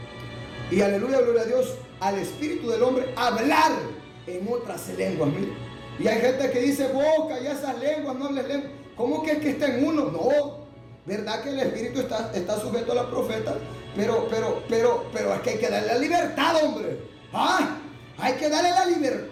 Y aleluya, gloria a Dios, al espíritu del hombre hablar en otras lenguas. Mira. Y hay gente que dice, boca y esas lenguas, no hables lenguas. ¿Cómo que está en uno? No, verdad que el espíritu está sujeto a la profeta, pero es que hay que darle la libertad, hombre. Hay que darle la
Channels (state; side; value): identical; both; correlation 1.00